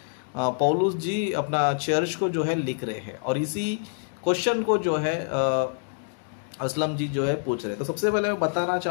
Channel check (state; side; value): silent; right; digital silence